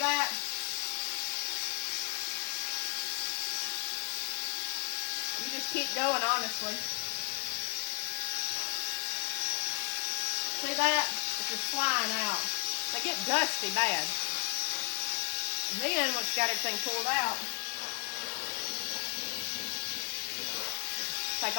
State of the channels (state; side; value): quieter; right; 38.0 dB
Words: that? You just keep going, honestly. See that? It's just flying out. They get dusty bad. And then once you got everything pulled out, take